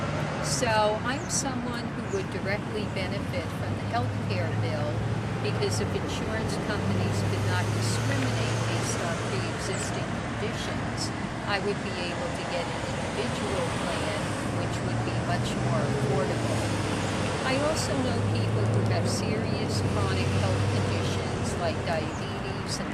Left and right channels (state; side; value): identical; both; correlation 1.00